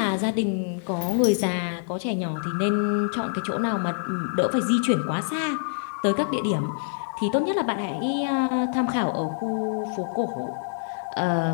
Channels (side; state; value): right; silent; digital silence